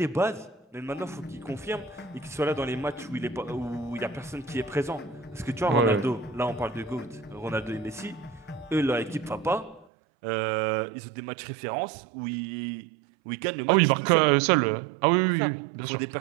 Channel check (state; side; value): drops out; left; at 9.9 s